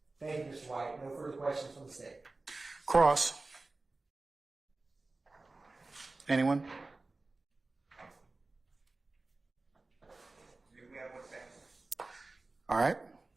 Thank you, Mr. White. No further questions from the state. Cross. Anyone? We have 1 second. All right.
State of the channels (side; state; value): left; quieter; 3.3 dB